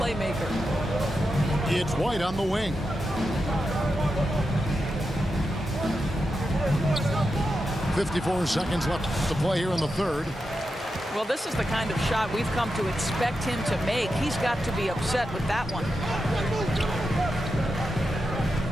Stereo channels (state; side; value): normal; both; correlation 0.88